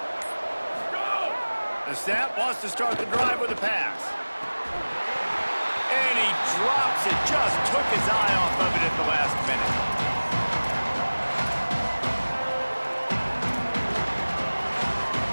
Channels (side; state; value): both; inverted; correlation -1.00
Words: The snap wants to start the drive with a pass. And he drops it, just took his eye off of it at the last minute.